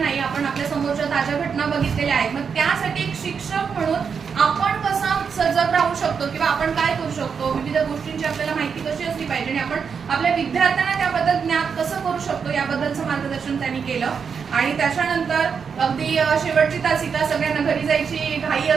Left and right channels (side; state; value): left; quieter; 6.3 dB